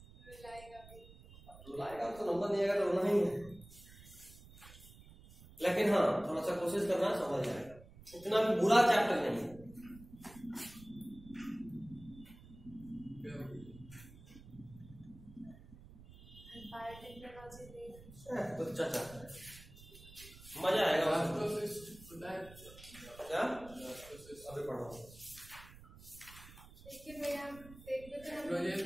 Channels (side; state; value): right; noise; rumble, 19 dB below the sound